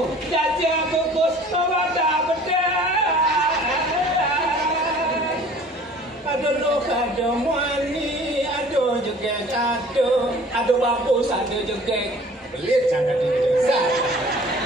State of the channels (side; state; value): both; normal; correlation 0.49